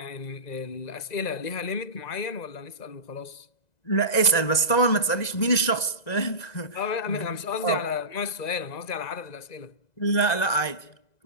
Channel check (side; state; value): right; late; 2.0 ms